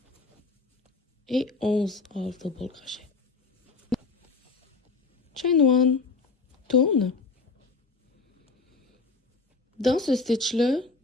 Et 11 half double crochet. Chain 1, tourne. Dans ce stitch-là,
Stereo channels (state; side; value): quieter; right; 4.1 dB